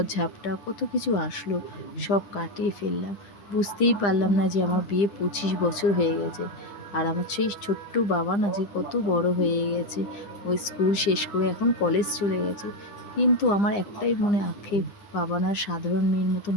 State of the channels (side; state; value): right; late; 9.9 ms